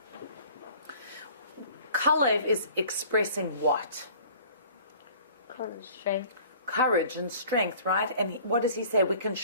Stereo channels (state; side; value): inverted; both; correlation -0.50